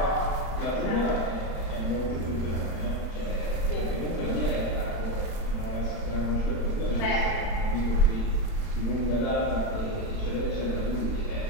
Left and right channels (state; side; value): late; right; 35 ms